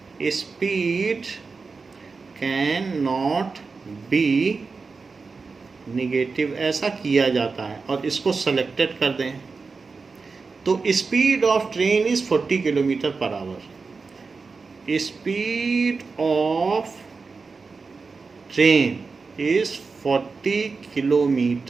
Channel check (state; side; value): quieter; left; 4.5 dB